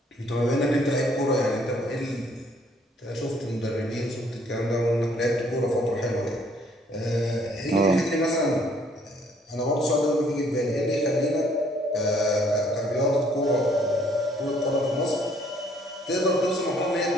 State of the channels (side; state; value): both; normal; correlation 0.63